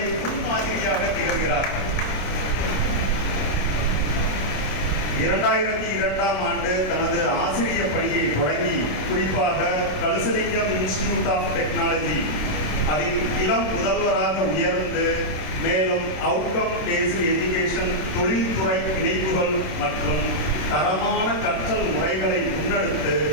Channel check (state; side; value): late; right; 27 ms